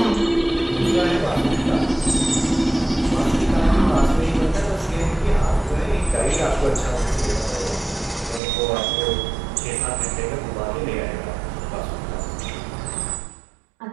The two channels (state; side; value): drops out; left; at 8.4 s